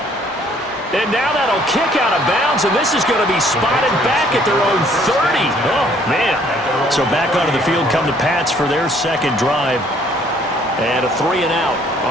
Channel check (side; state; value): both; normal; correlation 0.61